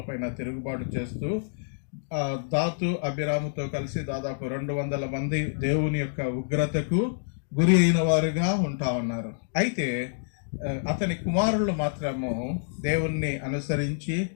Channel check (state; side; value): silent; right; digital silence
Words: పైన తిరుగుబాటు చేస్తూ దాతు అభిరాముతో కలిసి దాదాపు 200 మంది దేవుని యొక్క ఉగ్రతకు గురి అయిన వారుగా ఉన్నారు. అయితే అతని కుమారులు మాత్రము దేవుణ్ణి అనుసరించి